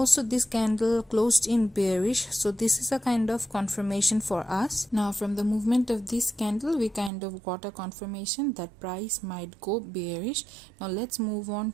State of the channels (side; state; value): left; drops out; at 7.1 s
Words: this candle closed in bearish. So this is a kind of confirmation for us. Now from the movement of this candle, we kind of got a confirmation that price might go bearish. Now let's move